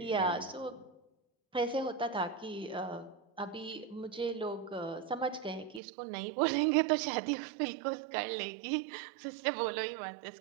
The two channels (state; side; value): drops out; left; at 5.8 s